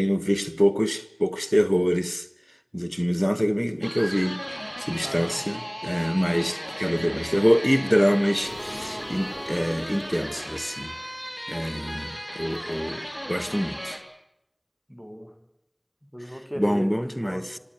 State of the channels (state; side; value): identical; both; correlation 1.00